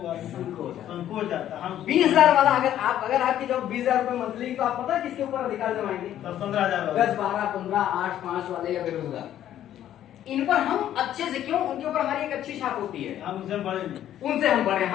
संकोच जाता। हम 20,000 वाला अगर आपकी जॉब 20,000 रुपए मंथली, तो आप पता है किसके ऊपर अधिकार जमाएंगे? 10-15,000 10 12 15 8 5 वाले या बेरोजगार, इन पर हम अच्छे से, क्यों, उनके ऊपर हमारी एक अच्छी छाप होती है। हम उनसे बड़े नहीं, उनसे हम बड़े,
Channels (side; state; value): right; quieter; 11.5 dB